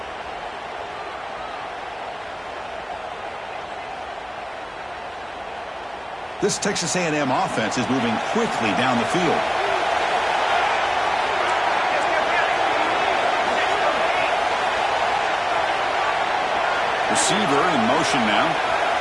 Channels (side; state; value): both; identical; correlation 1.00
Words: This Texas A&M offense is moving quickly down the field. Receiver in motion now.